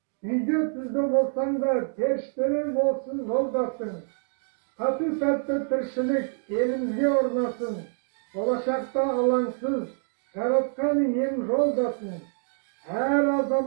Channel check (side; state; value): left; silent; 60 dB below the other